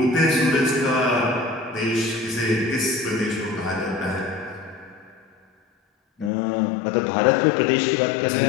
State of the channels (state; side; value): drops out; right; at 6.3 s